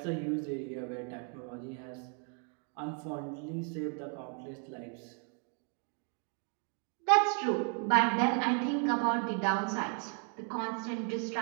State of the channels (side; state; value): left; quieter; 40.0 dB